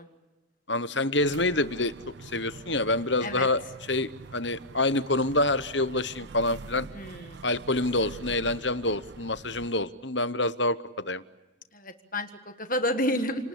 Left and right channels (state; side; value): normal; both; correlation -0.09